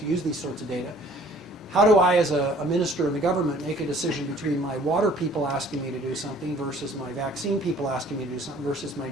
use these sorts of data, how do I, as a minister in the government, make a decision between my water people asking me to do something versus my vaccine people asking me to do something versus my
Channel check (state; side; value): normal; both; correlation 0.55